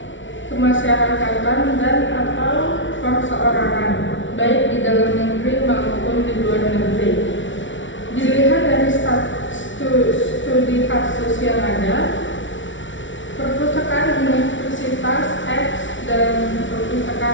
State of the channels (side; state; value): right; late; 0.56 ms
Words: kemasyarakatan dan atau perseorangan, baik di dalam negeri maupun di luar negeri. Dilihat dari studi kasus yang ada, perpustakaan Universitas X dan